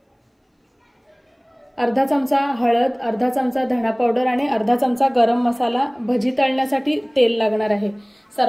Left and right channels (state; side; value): identical; both; correlation 1.00